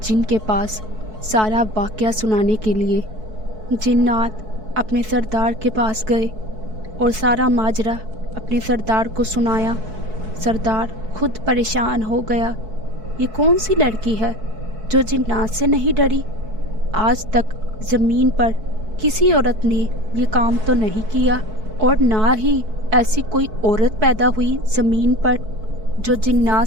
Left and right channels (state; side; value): late; left; 4.6 ms